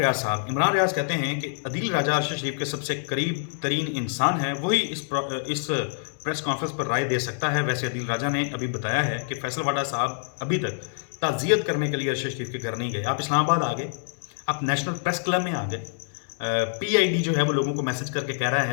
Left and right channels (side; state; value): right; silent; digital silence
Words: صاحب، عمران ریاض کہتے ہیں کہ عدیل راجہ ارشد شریف کے سب سے قریب ترین انسان ہے، وہی اس پریس کانفرنس پر رائے دے سکتا ہے۔ ویسے عدیل راجہ نے ابھی بتایا ہے کہ فیصل واڈا صاحب ابھی تک تعزیت کرنے کے لیے ارشد شریف کے گھر نہیں گئے۔ آپ اسلام آباد آ گئے، آپ نیشنل پریس کلب میں آ گئے، پی آئی ڈی جو ہے وہ لوگوں کو میسج کر کے کہہ رہا